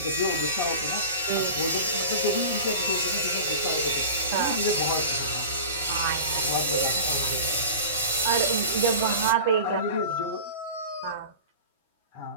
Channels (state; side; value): inverted; both; correlation -0.34